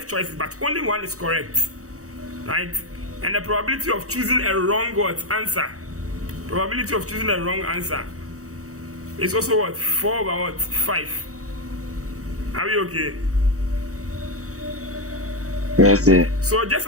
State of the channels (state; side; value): late; left; 0.65 ms